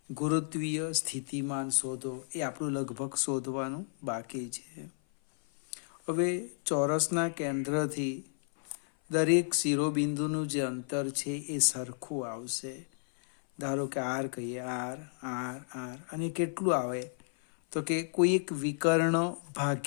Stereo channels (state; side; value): silent; right; 56 dB below the other